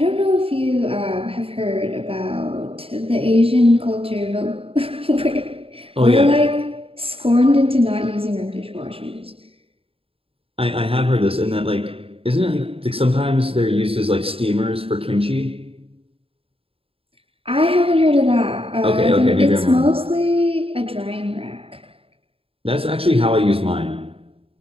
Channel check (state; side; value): late; left; 0.27 ms